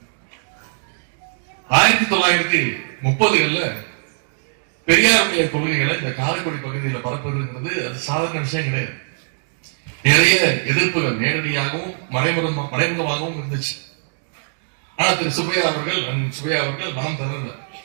1930களில் பெரியாருடைய கொள்கைகளை இந்த காரைக்குடி பகுதியில் பரப்புவதுங்கிறது அது சாதாரண விஷயம் கிடையாது. நிறைய எதிர்ப்புகள் நேரடியாகவும் மறைமுகமாகவும் இருந்துச்சு. ஆனா திரு சுப்பையா அவர்கள் நாம் தரல.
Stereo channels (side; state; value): left; silent; digital silence